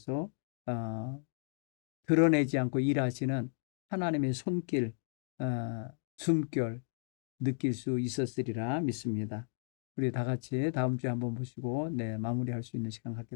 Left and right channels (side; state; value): right; silent; digital silence